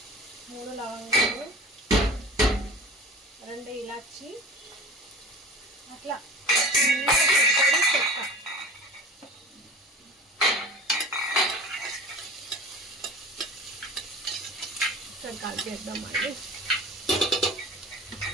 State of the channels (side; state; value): both; normal; correlation 0.38